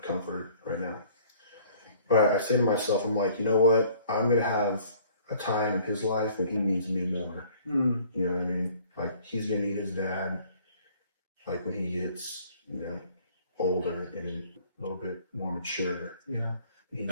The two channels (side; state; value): both; inverted; correlation -0.55